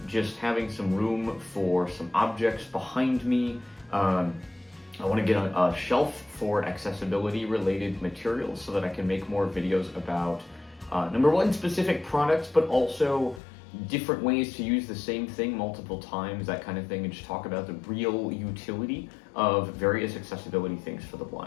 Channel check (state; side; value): drops out; right; at 13.4 s